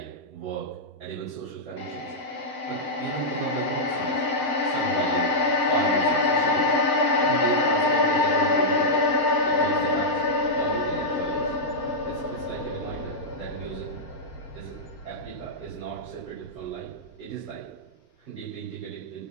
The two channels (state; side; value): late; left; 7.5 ms